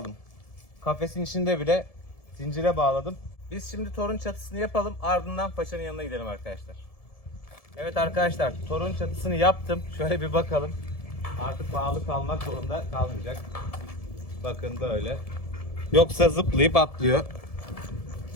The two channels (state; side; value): late; right; 1.7 ms